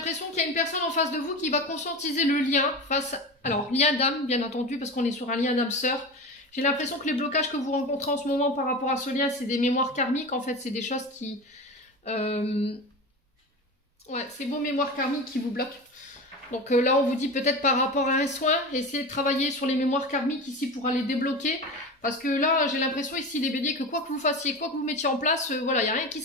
qu'il y a une personne en face de vous qui va conscientiser le lien face... Alors, lien d'âme, bien entendu, parce qu'on est sur un lien d'âme-sœur. J'ai l'impression que les blocages que vous rencontrez en ce moment par rapport à ce lien, c'est des mémoires karmiques. En fait, c'est des choses qui... Ouais, c'est vos mémoires karmiques qui vous bloquent. Donc là, on vous dit peut-être par rapport à un soin, essayez de travailler sur les mémoires karmiques ici pour aller débloquer. Parce que là, j'ai l'impression ici, les béliers, que quoi que vous fassiez, quoi que vous mettiez en place, voilà, il n'y a rien qui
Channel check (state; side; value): normal; both; correlation 0.27